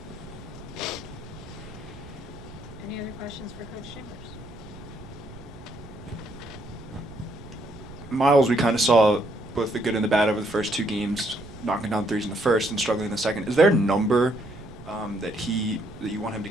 Any other questions for Coach Chambers? Miles, we kind of saw both the good and the bad over the first 2 games, knocking down threes in the first and struggling in the second. Is there a number that you want him to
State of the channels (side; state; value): right; noise; rumble, 16 dB below the sound